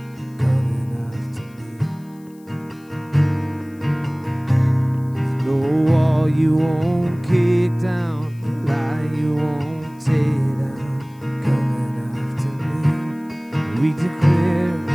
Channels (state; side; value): noise; left; hiss, 30 dB below the sound